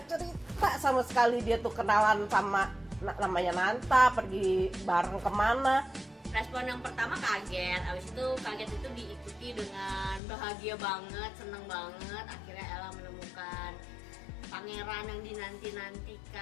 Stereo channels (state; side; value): drops out; right; at 10.2 s